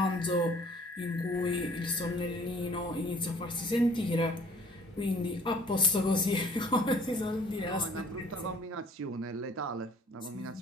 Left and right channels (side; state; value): both; normal; correlation 0.55